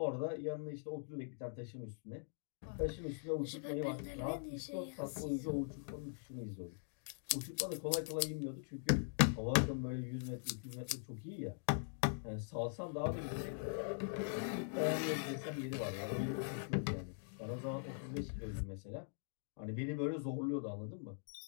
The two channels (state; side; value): silent; right; digital silence